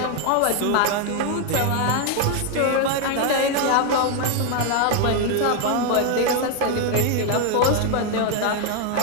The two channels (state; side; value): different; both; correlation 0.01